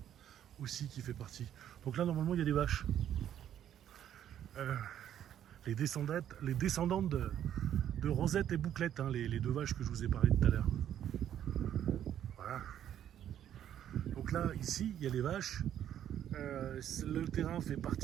aussi qui fait partie. Donc là, normalement, il y a des vaches. Les descendantes de Rosette et Bouclette, hein, les deux vaches que je vous ai parlé tout à l'heure. Voilà. Donc là, ici, il y a les vaches. Le terrain fait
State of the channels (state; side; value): quieter; left; 10.5 dB